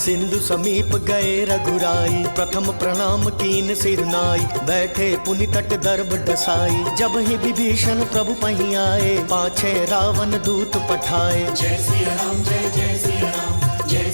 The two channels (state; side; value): inverted; both; correlation -1.00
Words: समीप गए रघुराई। प्रथम प्रणाम कीन सिर नाई, बैठे पुनि तट दर्भ डसाई। जब ही विभीषण प्रभु पही आए, पाछे रावण दूत पठाए। जय सिया राम जय जय सिया राम, जय